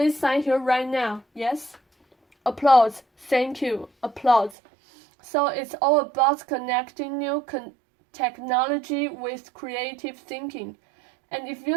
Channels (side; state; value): left; drops out; at 4.5 s